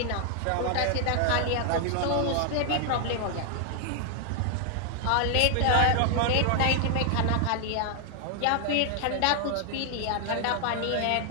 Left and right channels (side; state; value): both; different; correlation 0.00